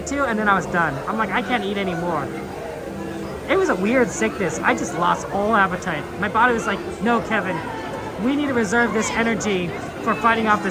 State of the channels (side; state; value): both; identical; correlation 1.00